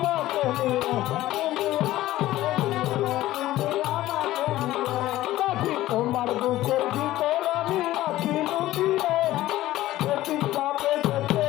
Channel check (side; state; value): right; quieter; 15.5 dB